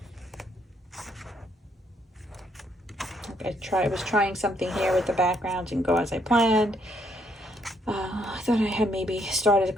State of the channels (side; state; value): both; normal; correlation 0.72